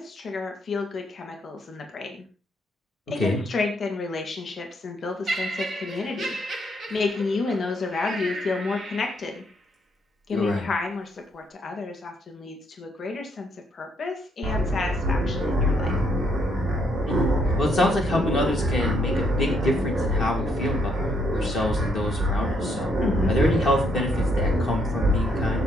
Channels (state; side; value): normal; both; correlation 0.72